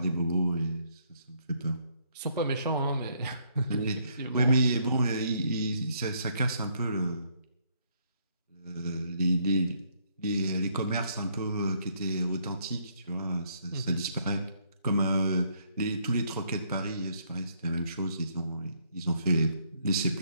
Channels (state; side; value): inverted; both; correlation -0.69